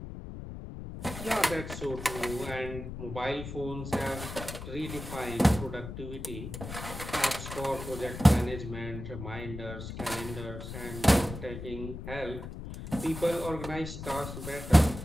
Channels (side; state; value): left; noise; rumble, 9 dB below the sound